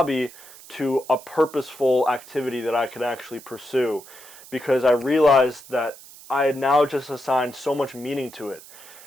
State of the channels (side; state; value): right; noise; hiss, 19 dB below the sound